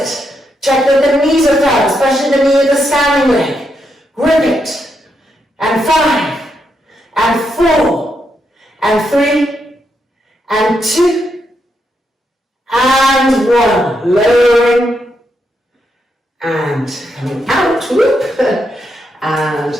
Check that the knees are firm, especially the knee of the standing leg. Grip it. And 5, and 4, and 3, and 2, and 1. Lowering, and coming out, whoop,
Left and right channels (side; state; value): both; normal; correlation 0.81